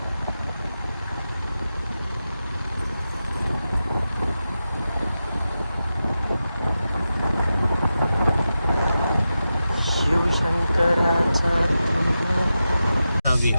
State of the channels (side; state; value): both; inverted; correlation -0.91